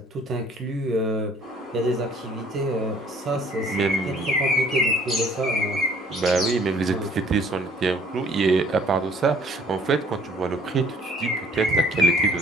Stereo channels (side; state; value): both; normal; correlation 0.58